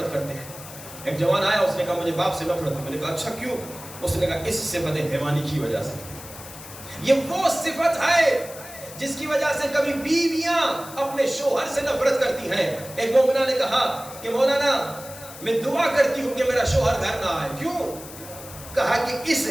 کرتے ہیں۔ ایک جوان آیا، اس نے کہا مجھے باپ سے نفرت ہے۔ میں نے کہا اچھا کیوں؟ اس نے کہا اس صفت حیوانی کی وجہ سے۔ یہ وہ صفت ہے جس کی وجہ سے کبھی بیویاں اپنے شوہر سے نفرت کرتی ہیں۔ ایک مومنہ نے کہا کہ مولانا میں دعا کرتی ہوں کہ میرا شوہر گھر نہ آئے، کیوں؟ کہا کہ اس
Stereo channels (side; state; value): left; noise; hiss, 15 dB below the sound